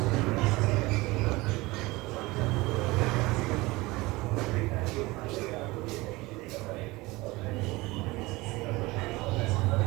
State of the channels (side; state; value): left; quieter; 21.6 dB